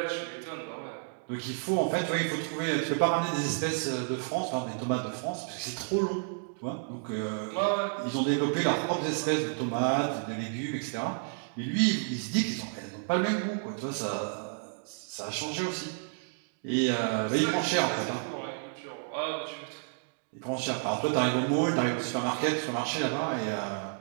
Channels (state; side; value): silent; left; digital silence